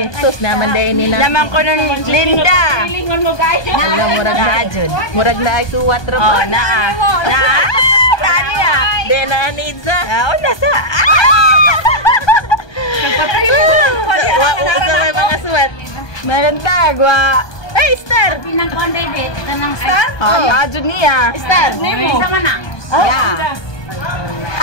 Sus naman dahil nila. Naman ko ng Linda. Lingon mo guys. Alam, murag na ajud. Murag na ay suwat ro. Oh, naa. Kani De na need sa. Oh, nasa. Nagpatay mo. Wa sa mga suwat. Maganda, gwa. Hey, Star! Pinang konday date kanang star. Oh, ajud niya. Star. Nemo. Sama na. Yeah.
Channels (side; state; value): right; late; 1.2 ms